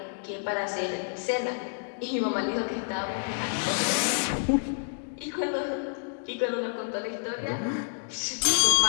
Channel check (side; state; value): right; silent; digital silence